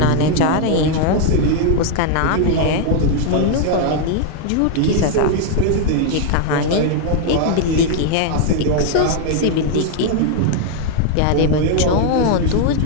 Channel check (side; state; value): both; different; correlation 0.00